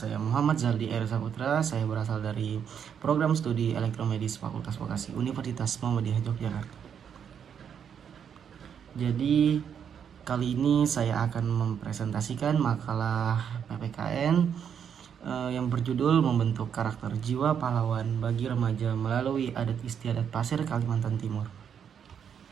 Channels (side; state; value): left; quieter; 7.9 dB